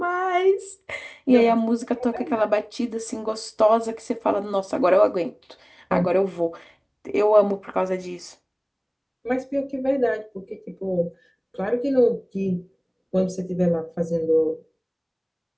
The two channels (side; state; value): both; identical; correlation 1.00